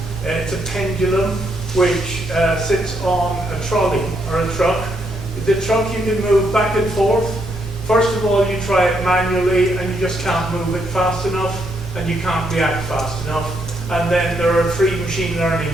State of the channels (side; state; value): both; normal; correlation 0.76